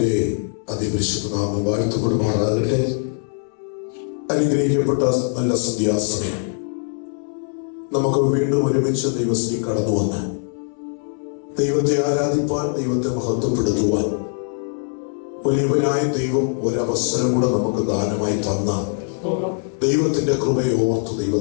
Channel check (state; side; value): silent; right; 59 dB below the other